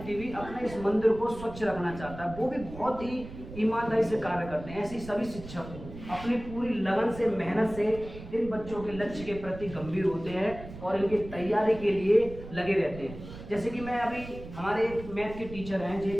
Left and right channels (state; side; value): noise; right; rumble, 13 dB below the sound